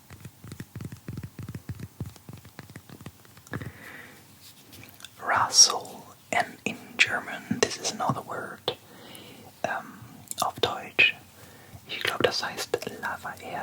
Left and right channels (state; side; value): identical; both; correlation 1.00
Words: Rassel, and in German this is another word auf Deutsch. Ich glaube, das heißt